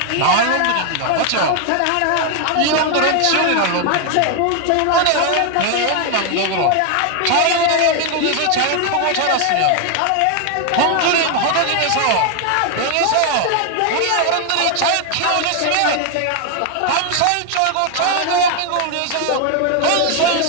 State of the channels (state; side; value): different; both; correlation 0.01